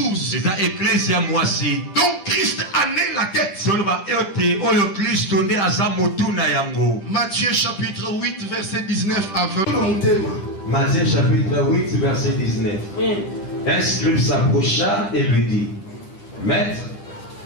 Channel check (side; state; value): right; late; 10 ms